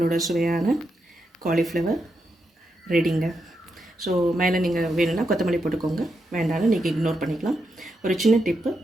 சுவையான காலிஃப்ளவர் ரெடிங்க. ஸோ மேலே நீங்கள் வேணும்னா கொத்தமல்லி போட்டுக்கோங்க, வேண்டாலும் நீங்கள் இக்னோர் பண்ணிக்கலாம். ஒரு சின்ன டிப்பு,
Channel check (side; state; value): both; normal; correlation 0.84